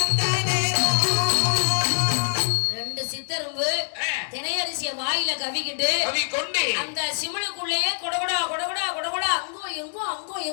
சித்தரும்பு திணையரிசிய வாயில கவிக்கிட்டு அந்த சிமிழுக்குள்ளேயே கொடகொடா கொடகொடா கொடகொடா அங்கோ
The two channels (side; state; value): right; silent; digital silence